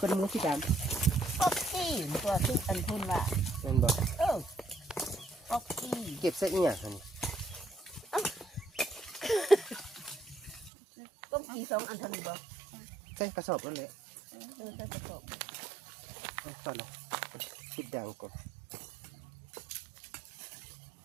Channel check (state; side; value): drops out; left; at 10.7 s